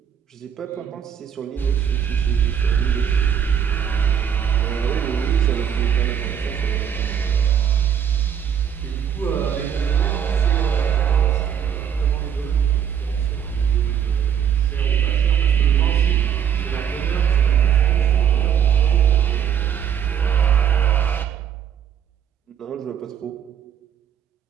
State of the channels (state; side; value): quieter; left; 8.7 dB